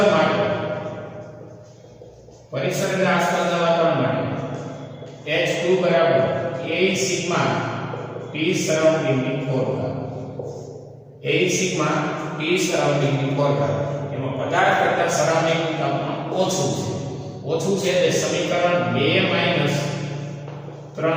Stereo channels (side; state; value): both; identical; correlation 1.00